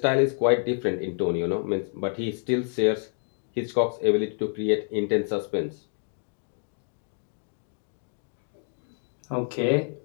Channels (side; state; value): right; silent; 59 dB below the other